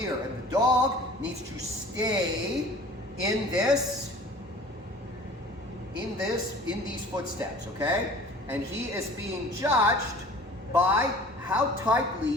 and the dog needs to stay in these footsteps, okay? And he is being judged by how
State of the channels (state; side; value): normal; both; correlation 0.46